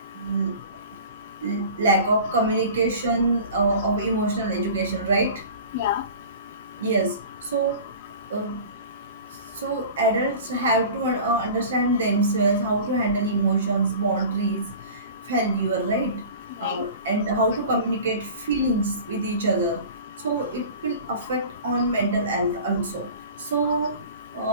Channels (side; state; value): both; inverted; correlation -0.39